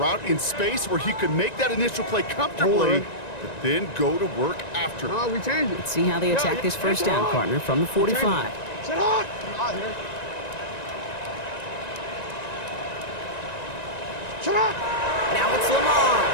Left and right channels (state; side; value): late; right; 1.9 ms